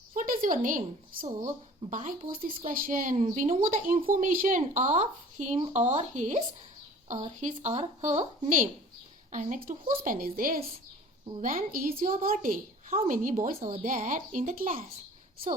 What is your name? So, by pose this question, we know the information of him or his or her name. And next, whose pen is this? When is your birthday? How many boys are there in the class?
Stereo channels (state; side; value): normal; both; correlation 0.47